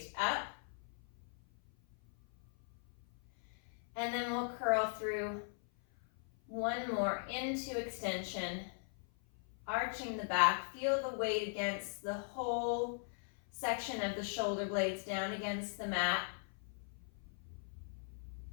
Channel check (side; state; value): right; silent; 51 dB below the other